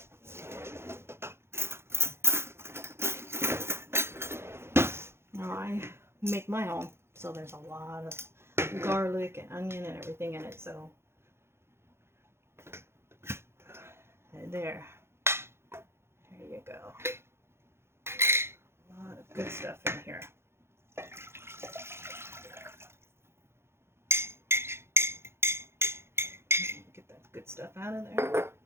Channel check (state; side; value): late; left; 0.12 ms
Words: Now I make my own, so there's a lot of garlic and onion and everything in it. So there you go. A lot of good stuff in here. Get that good stuff out of there.